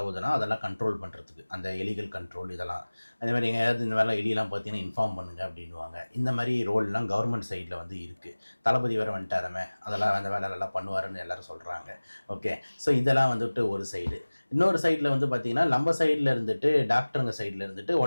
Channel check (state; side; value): inverted; both; correlation -1.00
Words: அதெல்லாம் கண்ட்ரோல் பண்ணுறதுக்கு, அந்த எலிகள் கண்ட்ரோல் இதெல்லாம். அதே மாதிரி எங்கேயாவது இந்த வேலை எலியெல்லாம் பார்த்தீங்கன்னா இன்ஃபார்ம் பண்ணுங்க அப்படின்வாங்க. இந்த மாதிரி ரோல்லாம் கவர்மெண்ட் சைடில் வந்து இருக்குது. தளபதி வேறு வந்துட்டாரமே, அதெல்லாம் அந்த வேலையெல்லாம் பண்ணுவாருன்னு எல்லோரும் சொல்கிறாங்க. ஓகே, ஸோ இதெல்லாம் வந்துட்டு ஒரு சைடு. இன்னொரு சைடில் வந்து பார்த்திங்கன்னா நம்ம சைடில் இருந்துட்டு டாக்டருங்க சைடில் இருந்துட்டு